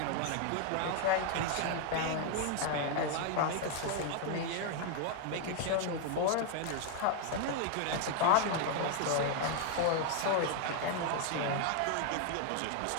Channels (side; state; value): both; different; correlation 0.00